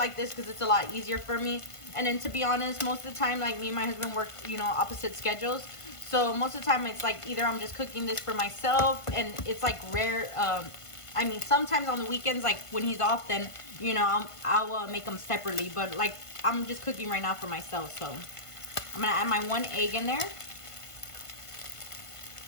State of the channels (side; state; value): right; late; 1.5 ms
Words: this because it's a lot easier for me. And then to be honest, most of the time, like, me and my husband work, you know, opposite schedules. So most of the time it's like either I'm just cooking this for myself, and it's like rare. I mean, sometimes on the weekends, like when he's off, then, you know, I'll make them separately. But like, I'm just cooking right now for myself. So I'm gonna add my 1 egg in there.